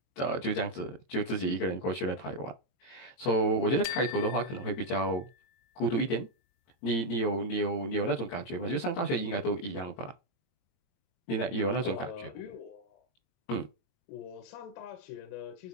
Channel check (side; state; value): right; late; 22 ms